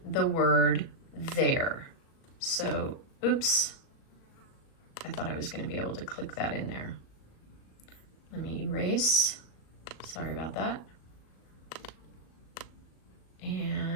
the word their. So, oops, I thought I was going to be able to click that in there. Let me erase. Sorry about that.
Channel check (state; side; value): late; right; 37 ms